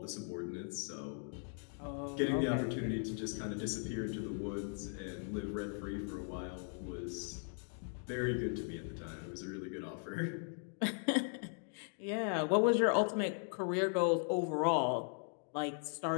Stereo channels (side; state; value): right; silent; 52 dB below the other